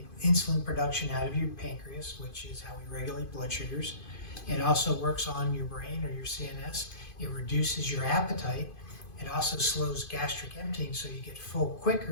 insulin production out of your pancreas, which is how we regulate blood sugars. It also works on your brain or your CNS. It reduces your appetite. It also slows gastric emptying, so you get full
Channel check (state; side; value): late; right; 2.5 ms